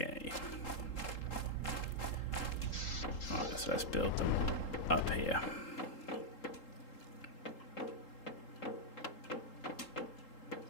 Right, so let's build them up here.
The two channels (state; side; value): late; right; 3.8 ms